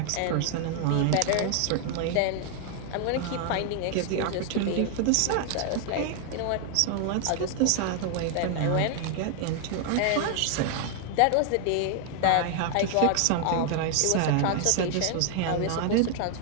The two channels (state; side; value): different; both; correlation 0.00